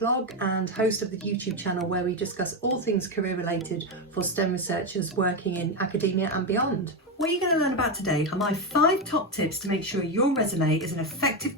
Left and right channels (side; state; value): both; normal; correlation 0.10